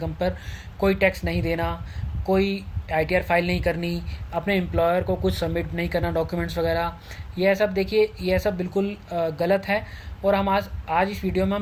पर कोई टैक्स नहीं देना, कोई आईटीआर फाइल नहीं करनी, अपने एम्प्लॉयर को कुछ सबमिट नहीं करना, डॉक्यूमेंट्स वगैरह। यह सब देखिए, यह सब बिल्कुल गलत है। और हम आज इस वीडियो में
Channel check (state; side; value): identical; both; correlation 1.00